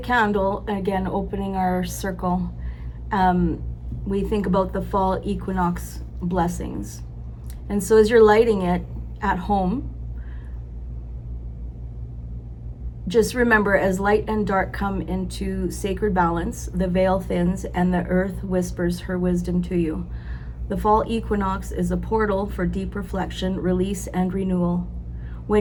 again, opening our circle, we think about the fall equinox blessings. And so as you're lighting it at home, just remember, as light and dark come into sacred balance, the veil thins and the earth whispers her wisdom to you. The fall equinox is a portal for deep reflection, release, and renewal.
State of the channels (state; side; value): identical; both; correlation 1.00